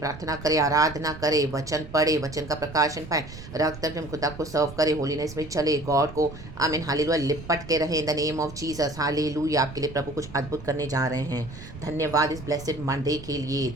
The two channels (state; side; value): noise; right; rumble, 14 dB below the sound